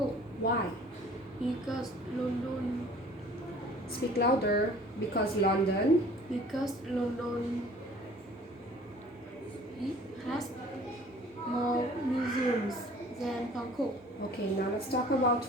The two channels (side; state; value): both; normal; correlation 0.50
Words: Why? because London Speak louder. Because London. it has more museums than Bangkok. Okay, now let's talk about